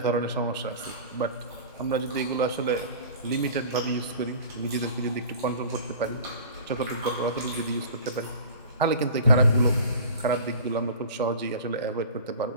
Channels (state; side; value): inverted; both; correlation -0.40